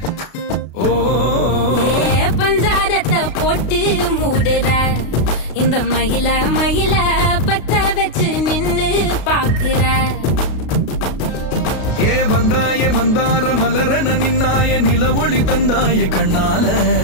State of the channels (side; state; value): right; late; 33 ms